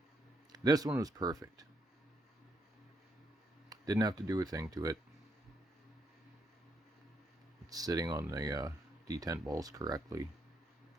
This one was perfect. Didn't have to do a thing to it. It's sitting on the detent balls correctly.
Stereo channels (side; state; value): both; normal; correlation 0.76